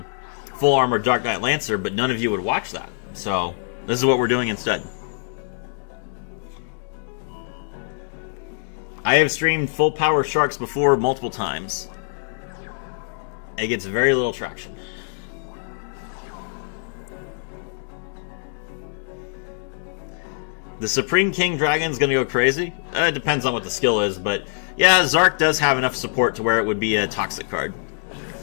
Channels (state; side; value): silent; right; digital silence